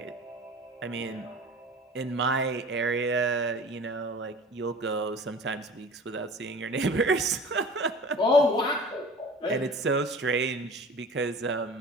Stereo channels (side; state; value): both; normal; correlation 0.41